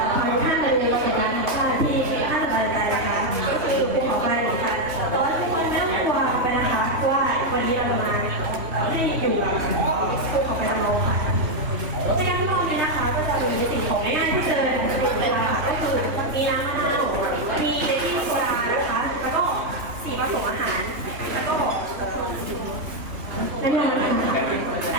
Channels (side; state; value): left; late; 2.9 ms